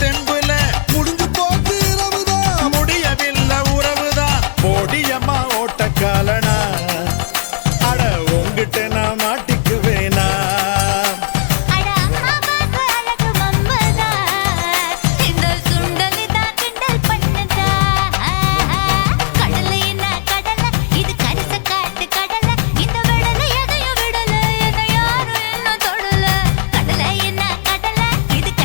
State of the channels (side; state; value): right; silent; digital silence